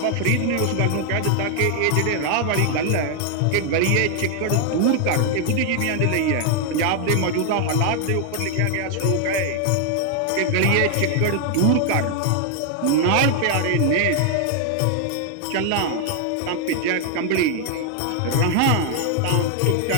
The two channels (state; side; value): different; both; correlation 0.00